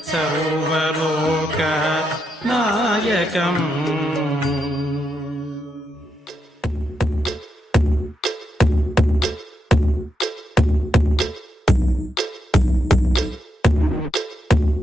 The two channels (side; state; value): both; normal; correlation 0.83